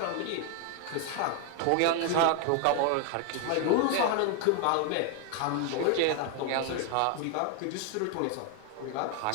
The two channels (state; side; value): different; both; correlation 0.01